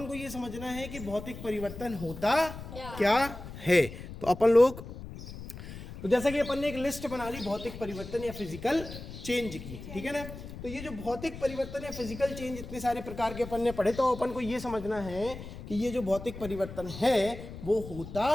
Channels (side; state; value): left; noise; rumble, 12 dB below the sound